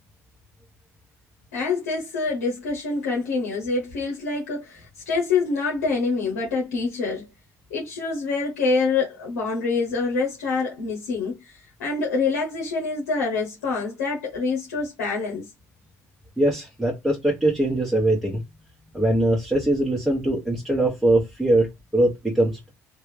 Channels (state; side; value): normal; both; correlation 0.63